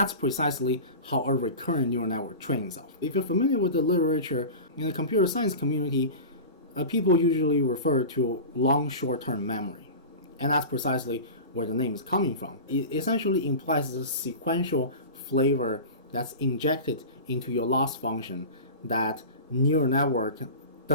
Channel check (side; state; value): both; inverted; correlation -0.31